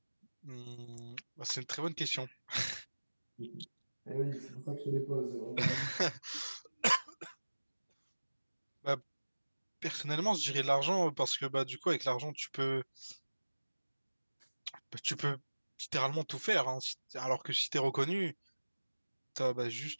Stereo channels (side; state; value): both; inverted; correlation -1.00